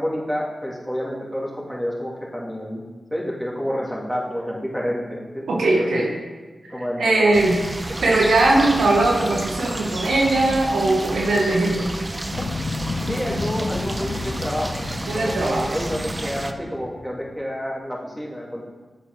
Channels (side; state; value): both; normal; correlation 0.92